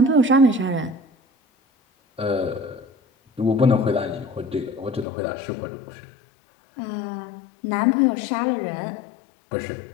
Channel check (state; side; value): drops out; right; at 5.1 s